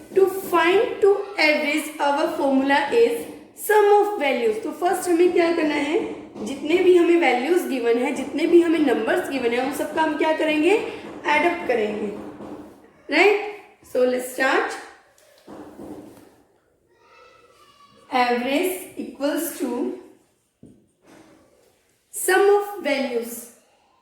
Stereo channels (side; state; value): both; identical; correlation 1.00